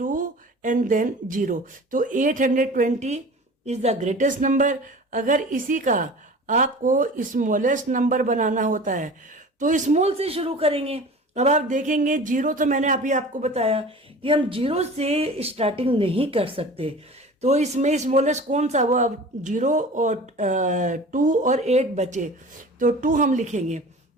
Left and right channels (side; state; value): both; normal; correlation 0.39